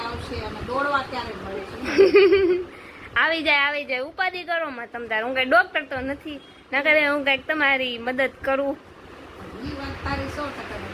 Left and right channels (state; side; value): identical; both; correlation 1.00